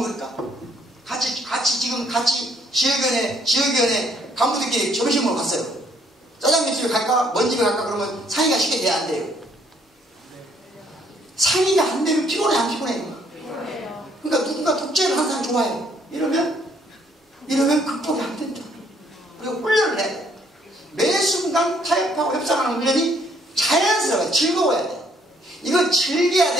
같이 지역위원회 간부들끼리 점심 먹으러 갔어요. 짜장면 집에 갈까? 먼 집에 갈까? 그러면 상의가 쉽게 돼야 안 돼요. 상의가 안 되면 피곤해, 안 피곤해? 그러니까 누군가 독재를 하는 사람 좋아해요. 이러면 극복이 안 된다. 그리고 훈련을 해야 돼. 매 순간 타협하고 협상하는 훈련이 자연스러워요. 즐거워야 돼. 이거 즐겨야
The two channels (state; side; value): normal; both; correlation 0.66